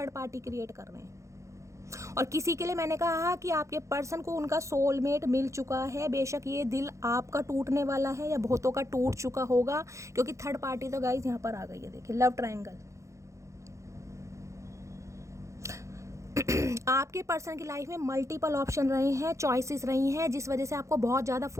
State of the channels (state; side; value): late; left; 0.15 ms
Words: पार्टी क्रिएट कर रहे हैं, और किसी के लिए मैंने कहा कि आपके पर्सन को उनका सोलमेट मिल चुका है। बेशक ये दिल आपका टूटने वाला है या बहुतों का टूट चुका होगा, क्योंकि थर्ड पार्टी तो गाइस यहाँ पर आ गई है। देखिए लव ट्रायंगल, आपके पर्सन की लाइफ में मल्टीपल ऑप्शन रहे हैं, चॉइसेस रही हैं, जिस वजह से आपको बहुत ज़्यादा